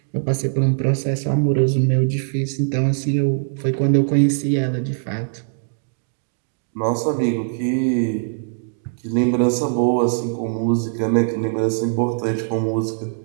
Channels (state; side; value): silent; left; digital silence